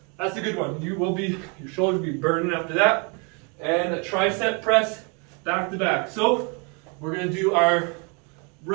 That's a good one. Your shoulders will be burning after that. And a tricep press back to back. So we're going to do our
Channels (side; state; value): left; quieter; 33.9 dB